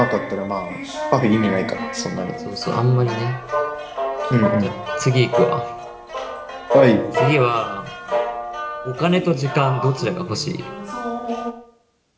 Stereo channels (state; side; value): identical; both; correlation 1.00